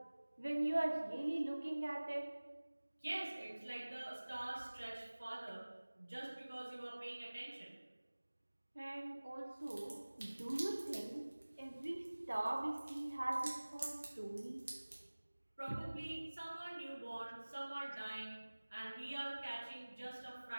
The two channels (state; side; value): inverted; both; correlation -1.00